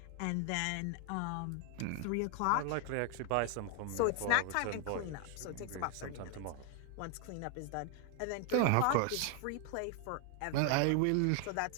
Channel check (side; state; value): both; different; correlation 0.00